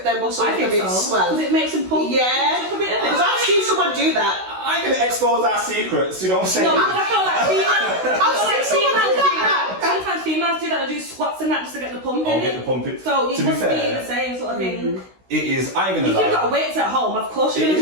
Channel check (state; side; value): late; left; 16 ms